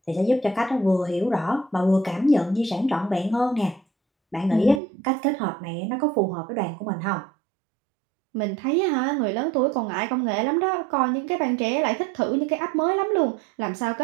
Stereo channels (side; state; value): left; drops out; at 4.8 s